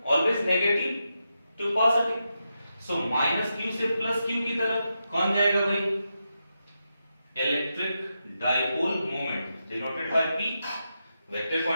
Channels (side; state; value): both; inverted; correlation -0.87